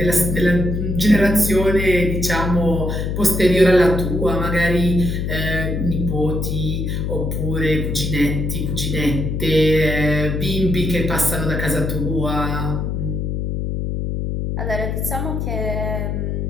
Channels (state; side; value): noise; left; hum, 2 dB below the sound